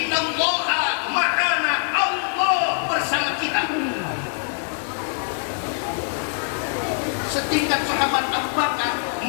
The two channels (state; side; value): silent; right; digital silence